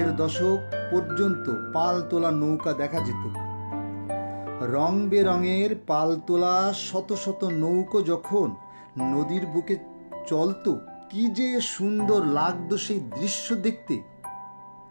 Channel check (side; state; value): both; inverted; correlation -1.00